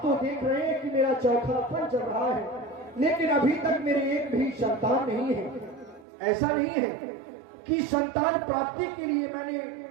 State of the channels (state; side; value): drops out; left; at 6.1 s